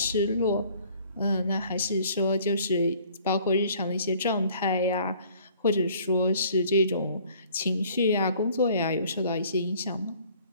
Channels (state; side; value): inverted; both; correlation -0.55